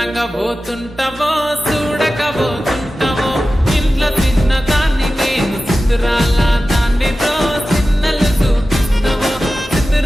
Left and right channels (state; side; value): normal; both; correlation 0.94